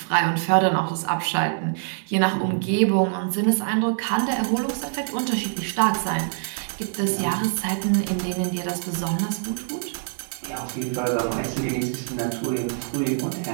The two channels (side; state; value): left; silent; 62 dB below the other